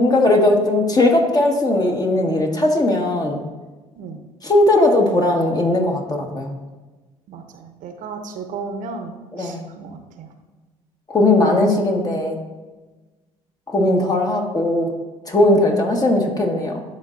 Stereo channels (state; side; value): normal; both; correlation 0.60